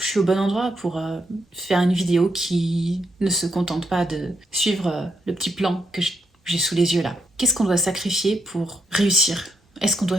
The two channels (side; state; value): both; normal; correlation 0.79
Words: suis au bon endroit pour faire une vidéo qui ne se contente pas de suivre le petit plan que j'ai sous les yeux là. Qu'est-ce qu'on doit sacrifier pour réussir Est-ce qu'on